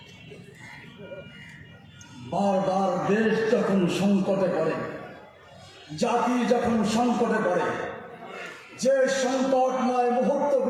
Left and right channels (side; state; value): both; identical; correlation 1.00